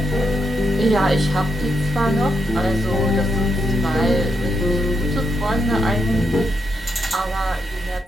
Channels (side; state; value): both; normal; correlation 0.82